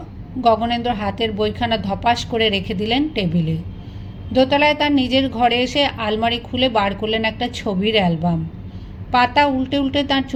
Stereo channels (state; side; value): identical; both; correlation 1.00